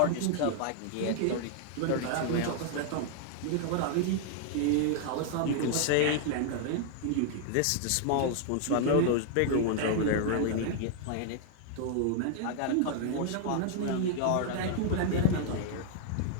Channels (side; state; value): both; different; correlation 0.00